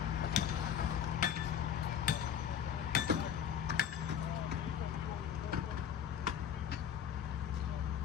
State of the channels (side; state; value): right; quieter; 8.8 dB